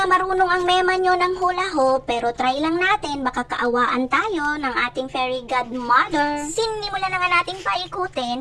marunong ang mema nyo ng hula hoop. Pero try lang natin. Baka kaawaan tayo ng ating fairy godmother. Sinimulan na nga nating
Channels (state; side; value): identical; both; correlation 1.00